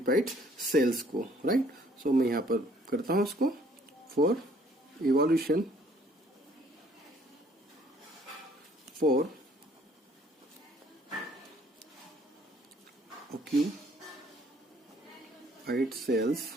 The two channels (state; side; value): normal; both; correlation 0.60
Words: सेल्स को, राइट। सो मैं यहाँ पर करता हूं इसको for evolution for occupied cells,